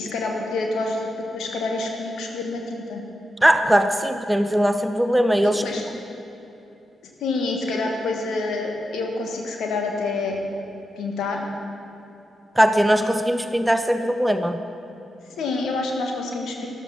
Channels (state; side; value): normal; both; correlation 0.89